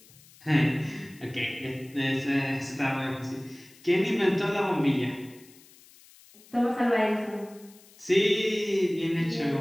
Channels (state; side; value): noise; left; hiss, 25 dB below the sound